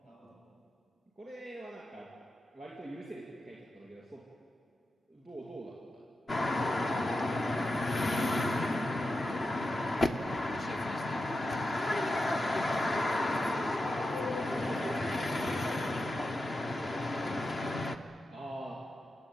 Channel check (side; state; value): both; normal; correlation 0.90